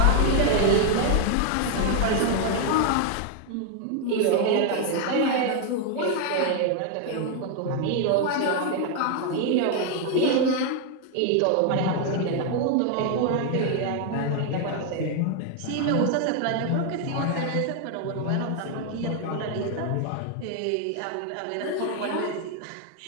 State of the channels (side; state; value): both; different; correlation 0.00